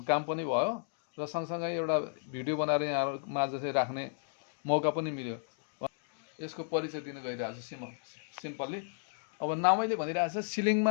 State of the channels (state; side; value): silent; right; digital silence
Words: काम पनि भयो र सँगसँगै एउटा भिडियो बनाएर यहाँहरूमा चाहिँ राख्ने मौका पनि मिल्यो। यसको परिचय दिन गइरहेको छु सिम्पल्ली। अब नामैले भनिरहेको छ